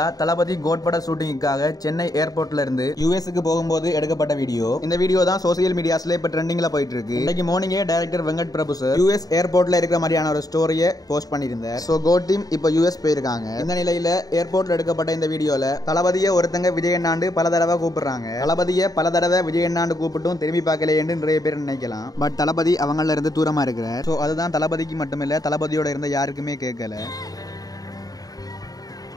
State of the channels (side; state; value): right; late; 0.18 ms